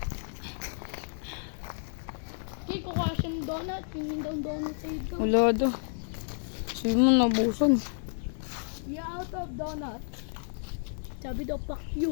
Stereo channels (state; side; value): silent; right; 57 dB below the other